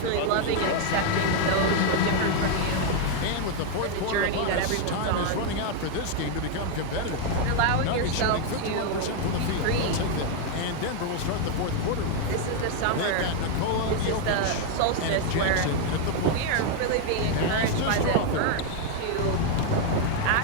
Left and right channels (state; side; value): different; both; correlation 0.01